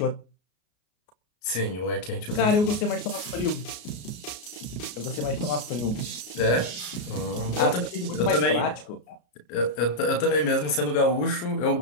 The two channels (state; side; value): late; right; 33 ms